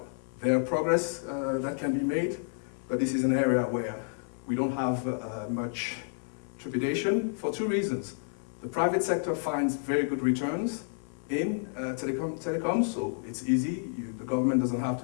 There are progress that can be made, but this is an area where we don't have much trepidation for two reasons. The private sector finds very good returns in telecom, so it's easy. The government doesn't have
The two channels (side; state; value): right; silent; 58 dB below the other